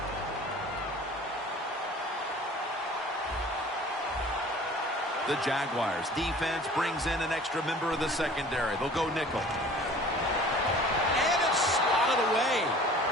The Jaguars defense brings in an extra member of the secondary. They'll go nickel. And it's swatted away.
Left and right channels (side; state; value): both; normal; correlation 0.47